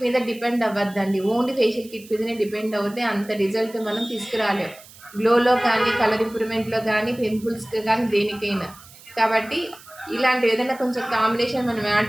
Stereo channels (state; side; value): noise; right; hiss, 21 dB below the sound